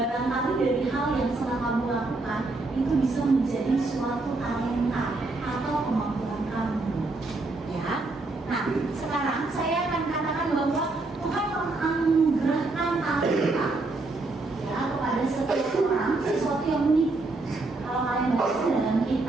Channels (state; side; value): quieter; left; 3.2 dB